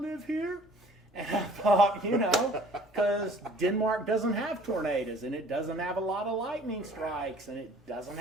live here? And I thought, because Denmark doesn't have tornadoes and it doesn't have a lot of lightning strikes and it doesn't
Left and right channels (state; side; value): normal; both; correlation 0.52